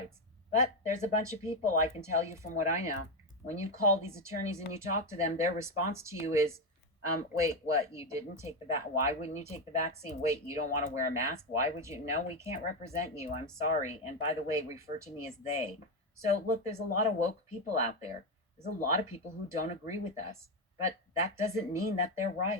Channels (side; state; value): both; normal; correlation 0.09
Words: But there's a bunch of people, I can tell you from what I know, when you call these attorneys and you talk to them, their response to you is, wait, what? You didn't take the why wouldn't you take the vaccine? Wait, you don't want to wear a mask? Why would you? No, we can't represent you. I'm sorry. And by the way, refer to me as they. So look, there's a lot of woke people out there. There's a lot of people who don't agree with us, but that doesn't mean that they're